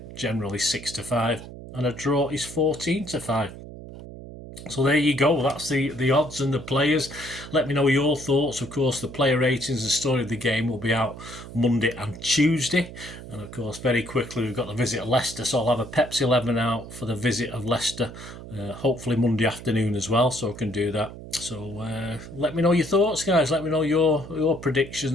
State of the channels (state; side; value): noise; right; hum, 13 dB below the sound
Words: generally 6-5. And a draw is 14-5. So there you go. That's the odds and the players. Let me know your thoughts. Of course, the player ratings and story of the game will be out Monday and Tuesday. And of course, very quickly, we've got the visit of Leicester. So I'll have a Pepsi 11 out for the visit of Leicester, hopefully Monday afternoon as well. So I can do that. So let me know your thoughts, guys. Let me know your